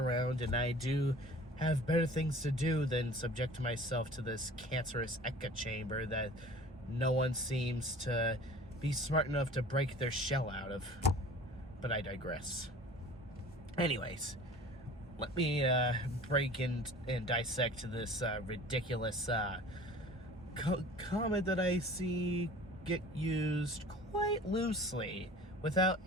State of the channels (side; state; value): both; normal; correlation 0.44